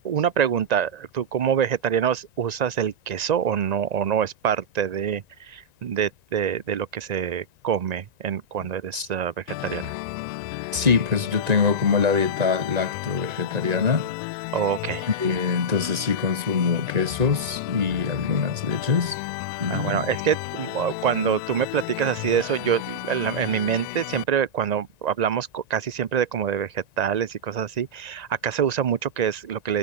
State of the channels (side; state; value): left; late; 1.9 ms